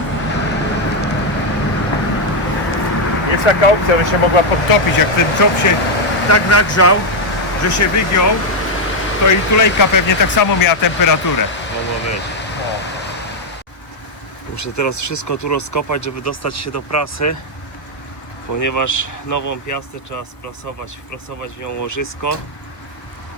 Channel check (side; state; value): right; late; 1.1 ms